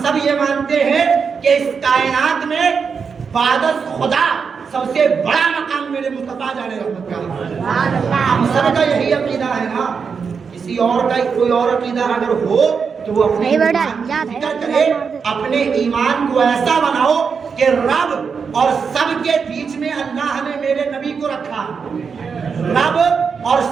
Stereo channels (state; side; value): quieter; left; 5.8 dB